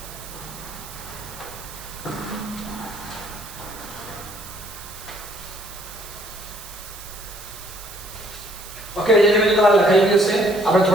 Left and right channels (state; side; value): noise; right; hiss, 14 dB below the sound